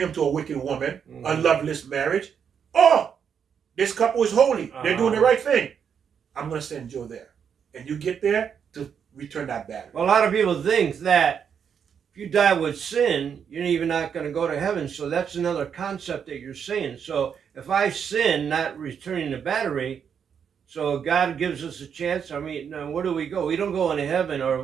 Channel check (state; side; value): quieter; left; 7.4 dB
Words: him to a wicked woman, a loveless marriage. Oh, this couple is holy. They're doing the right thing. I'm going to send Joe there. And you get there to return that battery. Well, a lot of people think that if you die with sin, you're even not going to go to heaven. So that's another concept that you're saying. So if I sin, not returning the battery, so God gives us a chance. I mean, now where do we go? We don't go into heaven, or